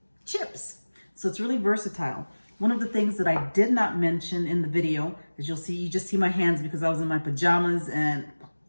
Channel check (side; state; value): both; inverted; correlation -1.00